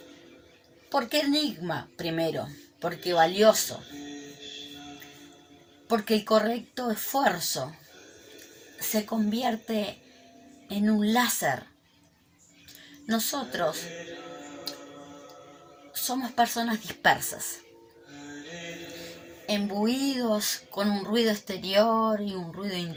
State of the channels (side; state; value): both; identical; correlation 1.00